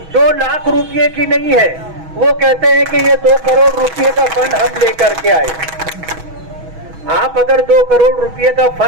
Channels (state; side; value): late; left; 6.2 ms